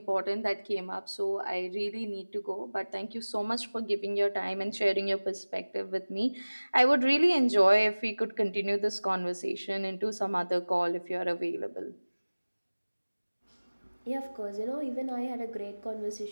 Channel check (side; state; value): both; inverted; correlation -1.00